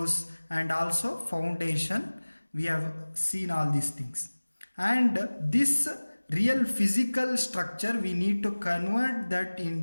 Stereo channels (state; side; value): inverted; both; correlation -1.00